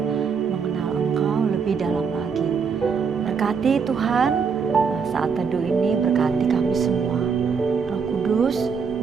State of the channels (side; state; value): left; quieter; 5.9 dB